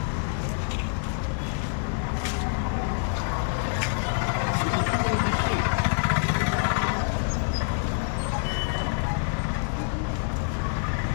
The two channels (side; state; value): right; silent; digital silence